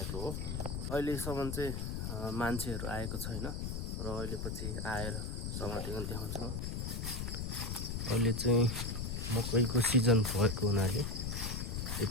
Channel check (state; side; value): noise; left; rumble, 3 dB below the sound